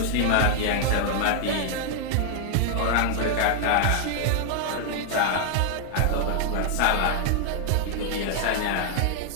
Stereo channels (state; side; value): different; both; correlation 0.00